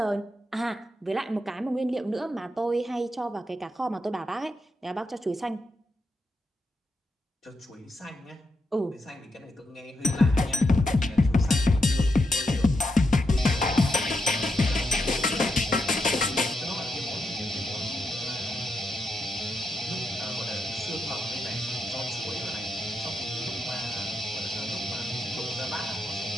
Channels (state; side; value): normal; both; correlation 0.84